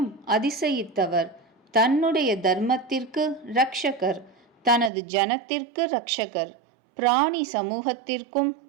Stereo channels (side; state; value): left; drops out; at 4.9 s